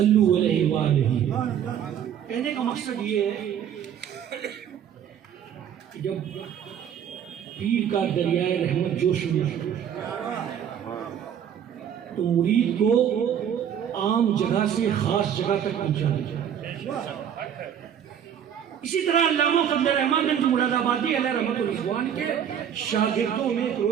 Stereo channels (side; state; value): left; quieter; 9.1 dB